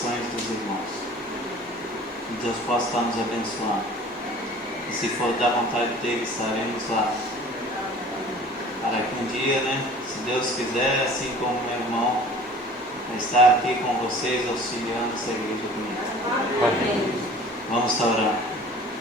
dos irmãos. E Deus possa estar nos abençoando. E se for da vontade dele, estaremos lá. Para que um dia, né, se Deus quiser, assim como meu irmão, vai estar aqui com vocês, auxiliando essa igreja comigo. Amém. Vamos estar orando.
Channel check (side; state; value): both; normal; correlation 0.46